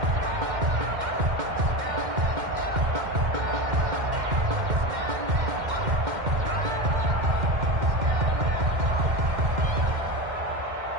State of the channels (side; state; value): left; late; 2.1 ms